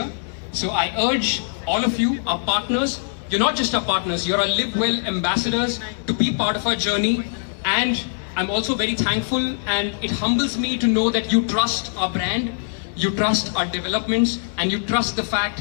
So I urge all of you, our partners, you're not just our partners, you're our Live Well ambassadors, to be part of our journey. And I'm also very thankful, and it humbles me to know that you trust our brand, you trust our developments, and you trust the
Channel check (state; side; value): silent; right; digital silence